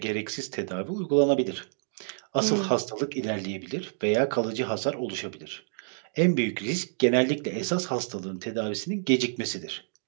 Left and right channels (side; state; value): left; silent; digital silence